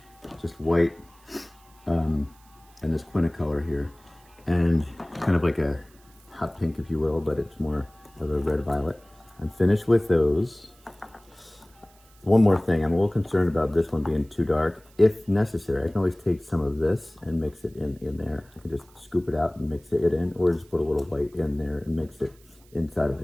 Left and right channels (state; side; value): noise; right; hiss, 29 dB below the sound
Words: just white and this quintacolor here, and kind of like a hot pink, if you will, but it's more of a red violet. I'm finished with those. One more thing, I'm a little concerned about this one being too dark. If necessary, I can always take some of this and mix it in there. I can just scoop it out and mix it in, or just put a little white in there and mix it inside of